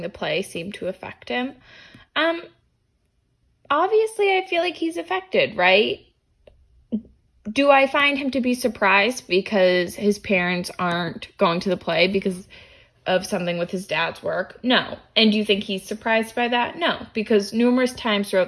the play seem to affect him? Obviously, I feel like he's affected, right? Do I find him to be surprised because his parents aren't going to the play because of something with his dad's work? No. And do you think he's surprised by that? No, because numerous times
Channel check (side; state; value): both; identical; correlation 1.00